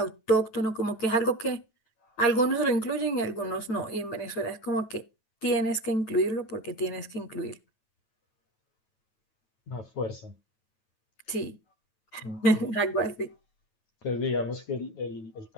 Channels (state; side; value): late; right; 9.2 ms